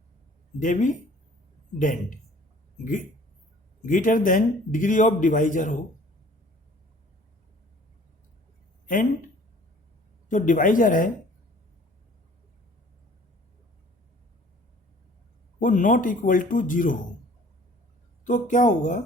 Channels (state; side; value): normal; both; correlation 0.52